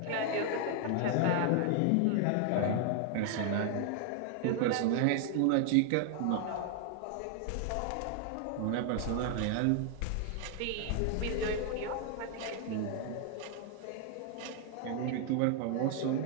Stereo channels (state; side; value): different; both; correlation 0.00